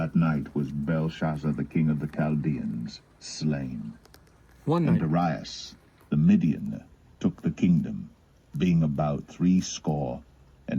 night was Belshazzar the king of the Chaldeans slain. One And night. Darius the Median took the kingdom, being about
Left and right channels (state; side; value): identical; both; correlation 1.00